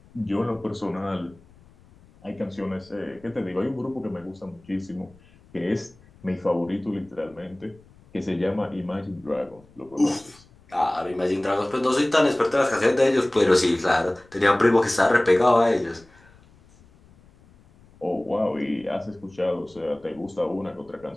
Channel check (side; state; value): left; noise; rumble, 27 dB below the sound